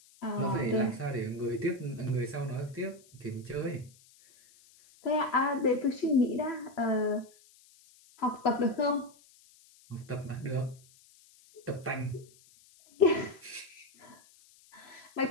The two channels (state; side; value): noise; left; hiss, 27 dB below the sound